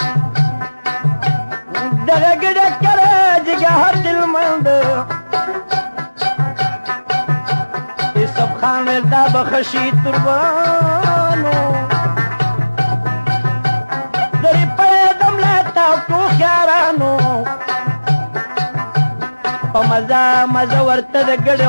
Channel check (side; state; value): both; inverted; correlation -1.00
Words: دغه ګډه که راجېږه هر دلمند یوسف خان ویل دا به ښه شي تربانو درې پیدم له تاکو خیارانو په مزه مزه ورته د ګډې